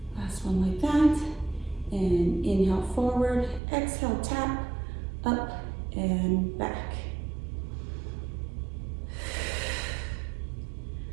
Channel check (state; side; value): drops out; left; at 3.6 s